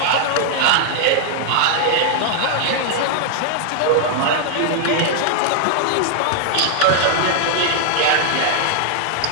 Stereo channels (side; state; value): both; different; correlation 0.00